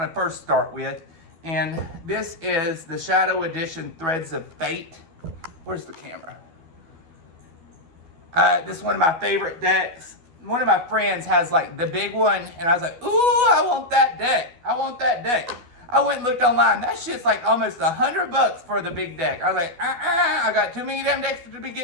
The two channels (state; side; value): late; left; 12 ms